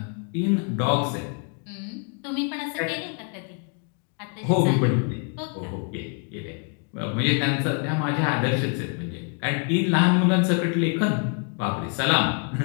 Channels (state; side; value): quieter; right; 38.5 dB